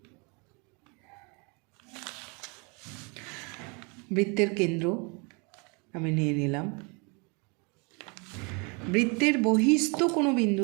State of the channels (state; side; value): quieter; left; 31.7 dB